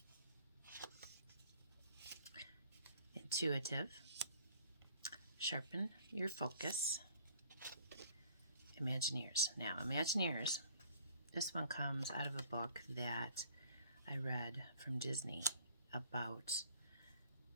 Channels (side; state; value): both; inverted; correlation -0.56